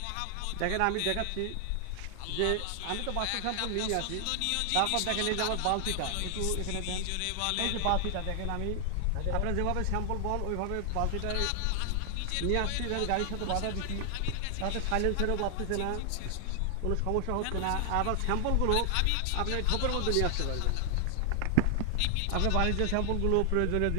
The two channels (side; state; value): both; different; correlation 0.00